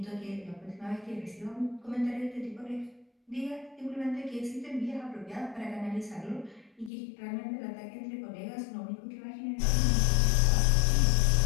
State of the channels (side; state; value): right; drops out; at 6.9 s